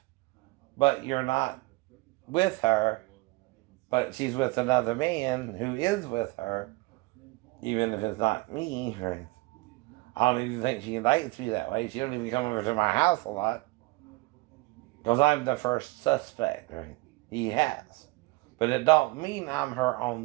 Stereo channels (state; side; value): quieter; left; 22.5 dB